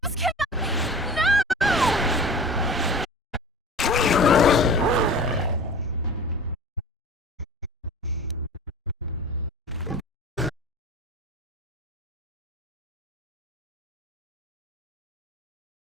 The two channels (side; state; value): both; normal; correlation 0.37